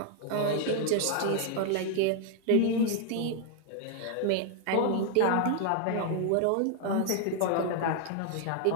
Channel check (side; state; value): both; different; correlation 0.00